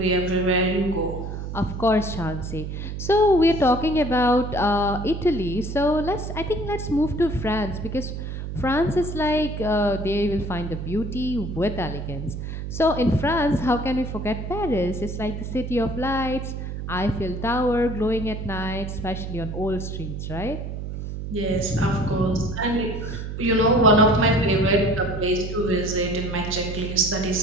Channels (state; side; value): noise; right; hum, 6 dB below the sound